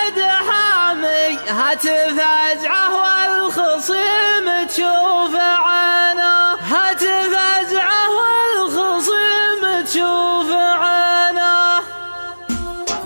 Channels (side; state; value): both; inverted; correlation -1.00